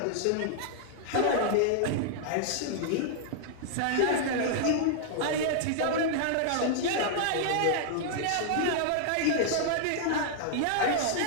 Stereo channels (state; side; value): different; both; correlation -0.01